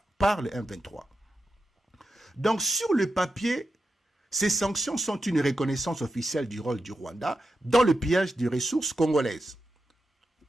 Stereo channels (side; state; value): both; normal; correlation 0.89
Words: par le 1,23. Donc sur le papier, ces sanctions sont une reconnaissance officielle du rôle du Rwanda dans le pillage des ressources congolaises.